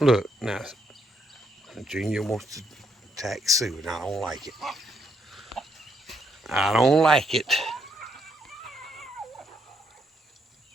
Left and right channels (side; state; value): both; normal; correlation 0.74